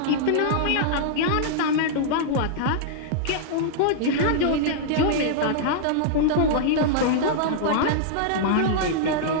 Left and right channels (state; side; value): different; both; correlation -0.02